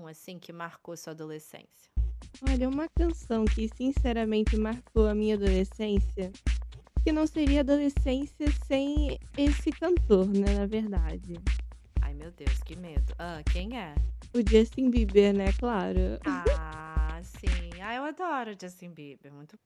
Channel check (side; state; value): both; identical; correlation 1.00